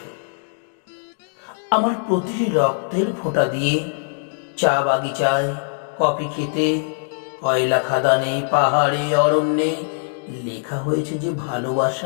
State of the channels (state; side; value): silent; right; digital silence